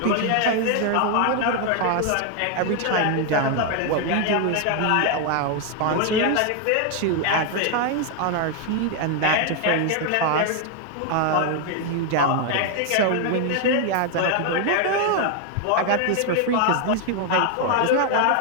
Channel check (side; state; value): both; different; correlation 0.00